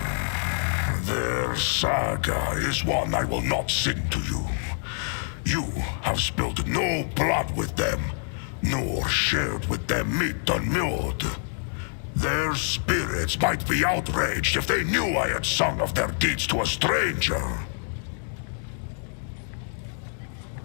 Their saga is one I will not sing to you. You have spilled no blood with them, nor shared with them meat unmewed. Their spirits might be outraged if they knew I had sung of their deeds to a stranger.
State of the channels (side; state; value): right; silent; digital silence